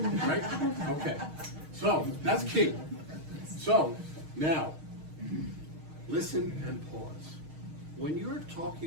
about." Right? Okay. So, that's key. So, now, listen and pause. When you're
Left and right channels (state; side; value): late; left; 6.4 ms